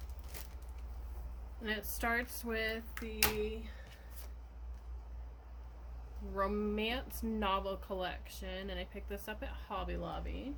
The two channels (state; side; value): identical; both; correlation 1.00